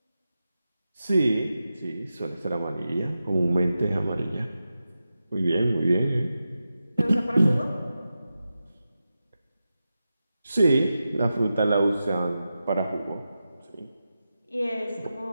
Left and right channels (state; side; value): inverted; both; correlation -0.91